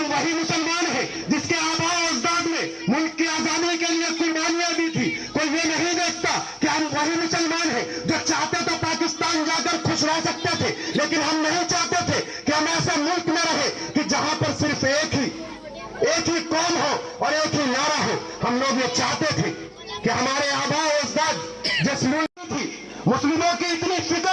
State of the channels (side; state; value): both; identical; correlation 1.00